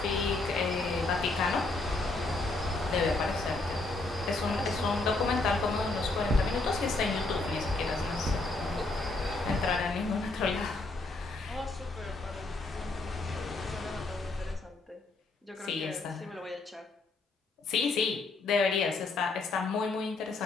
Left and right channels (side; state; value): right; quieter; 3.3 dB